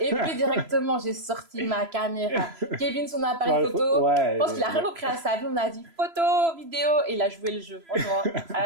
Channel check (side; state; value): left; late; 3.0 ms